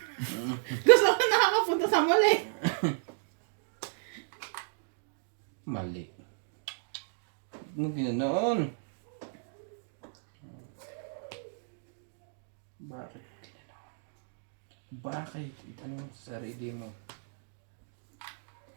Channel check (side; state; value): left; silent; digital silence